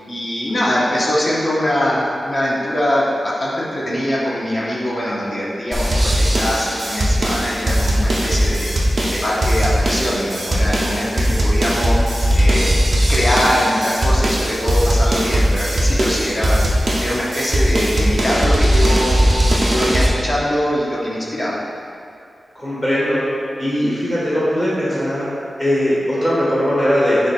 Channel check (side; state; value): both; normal; correlation 0.95